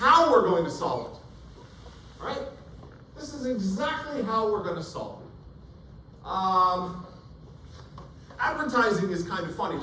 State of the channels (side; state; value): both; identical; correlation 1.00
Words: we're going to solve it. Right? This is exactly how we're going to solve it. Advertising is kind of funny.